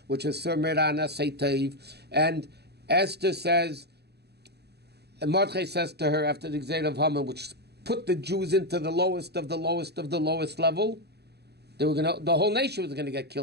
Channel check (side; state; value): left; late; 0.48 ms